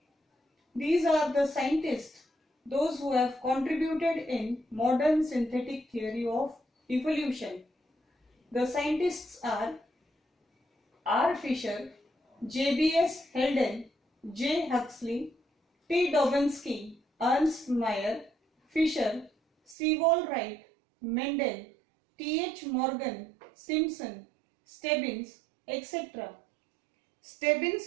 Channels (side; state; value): left; drops out; at 19.8 s